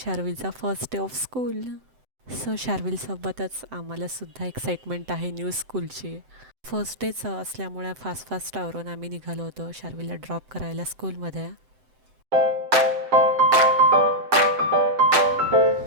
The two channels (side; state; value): left; late; 7.8 ms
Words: first day of school. So शार्विलसोबतच आम्हालासुद्धा एक्साइटमेंट आहे न्यू स्कूलची. फर्स्ट डेच असल्यामुळे फास्ट आवरून आम्ही निघालो होतो शार्विलला ड्रॉप करायला स्कूलमध्ये.